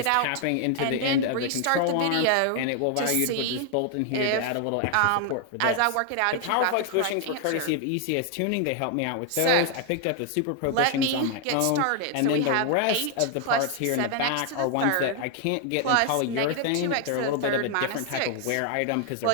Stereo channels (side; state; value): both; different; correlation 0.00